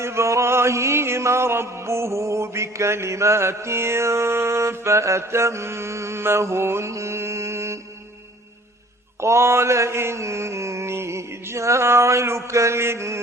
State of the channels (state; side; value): normal; both; correlation 0.52